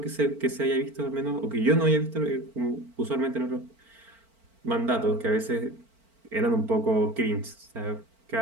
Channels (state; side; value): late; left; 4.4 ms